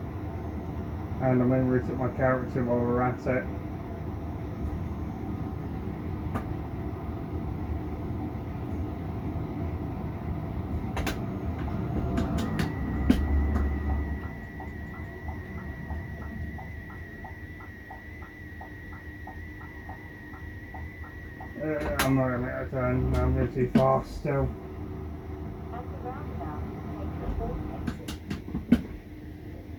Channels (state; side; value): identical; both; correlation 1.00